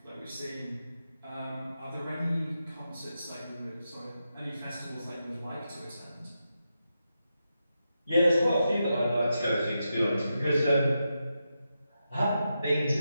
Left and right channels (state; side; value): inverted; both; correlation -0.87